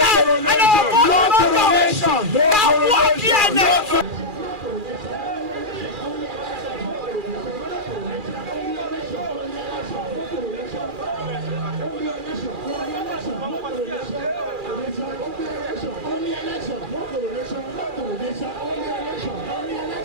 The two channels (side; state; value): left; late; 2.4 ms